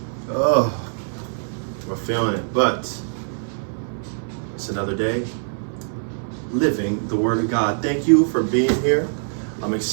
Oh, we're feeling it, but it's another day living the Word of God. Thank you for being here. I'm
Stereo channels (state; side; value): silent; left; digital silence